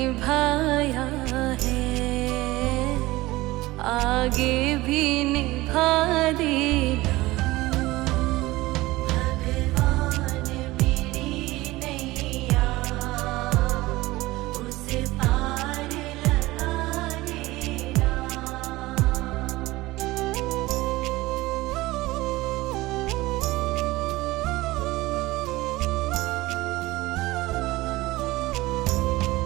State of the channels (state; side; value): quieter; left; 19.2 dB